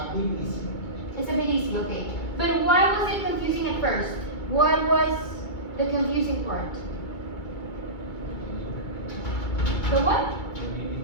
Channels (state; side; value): late; right; 2.2 ms